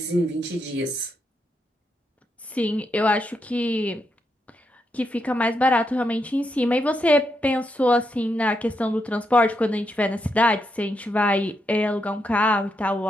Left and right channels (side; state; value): both; normal; correlation 0.82